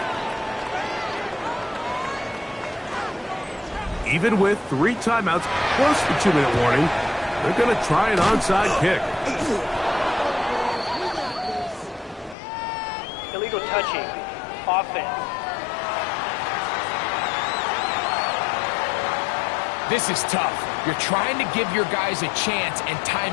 28. Even with 3 timeouts plus the 2-minute warning, they're going to try an onside kick. Illegal touching. Offense. This is tough. You're trying to give your guys a chance and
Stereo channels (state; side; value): drops out; right; at 12.4 s